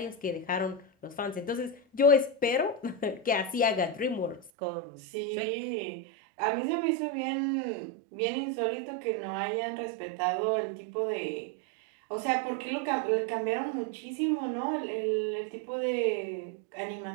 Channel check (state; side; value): drops out; left; at 4.5 s